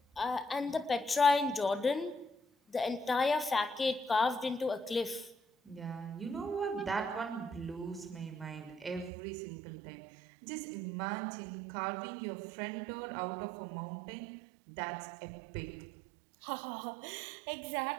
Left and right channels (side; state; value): left; drops out; at 9.1 s